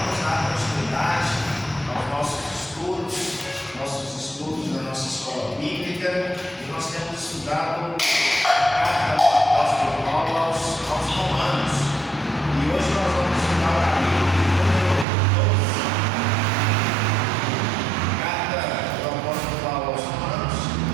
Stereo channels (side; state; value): left; drops out; at 15.1 s